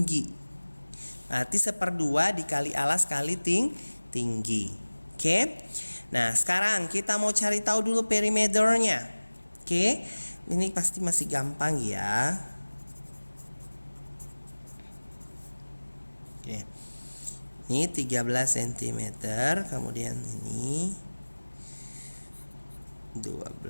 Berarti 1/2 dikali alas kali tinggi. Oke. Nah, sekarang kita mau cari tahu dulu perimeternya. Oke. Ini pasti masih gampang ya. Oke. Ini 13 cm, kemudian ini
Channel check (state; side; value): inverted; both; correlation -1.00